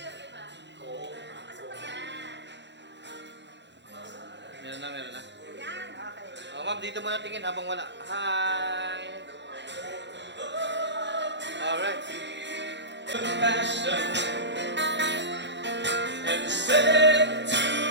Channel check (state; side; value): late; left; 0.52 ms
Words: Meron na, meron na. Oh, ma'am, dito muna tingin habang wala. Hi! Alright. Compassion and said to